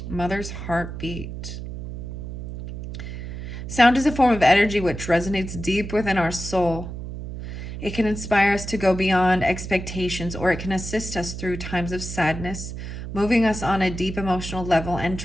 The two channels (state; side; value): noise; right; hum, 8 dB below the sound